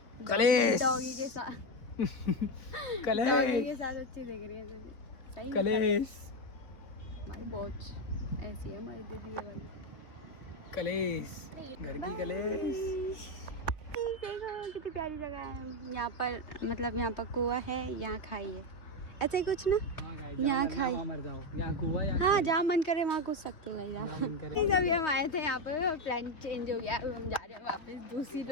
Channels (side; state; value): right; late; 3.3 ms